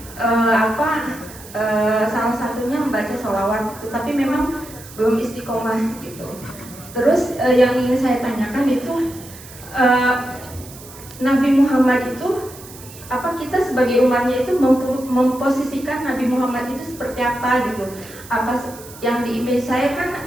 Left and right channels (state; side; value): noise; right; hiss, 18 dB below the sound